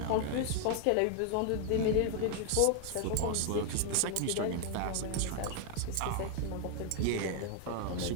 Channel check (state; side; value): different; both; correlation 0.00